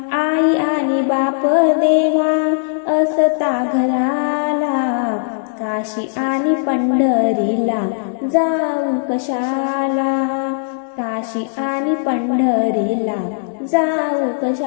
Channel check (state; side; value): silent; right; digital silence